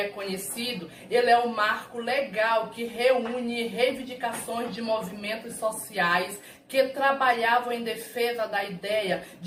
conhecido, ele é um marco legal que reúne reivindicações de movimentos sociais que trabalhavam em defesa da ideia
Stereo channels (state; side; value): identical; both; correlation 1.00